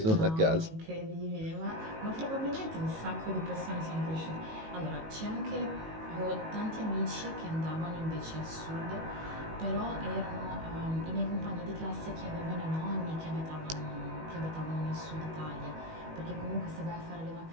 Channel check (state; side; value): late; left; 19 ms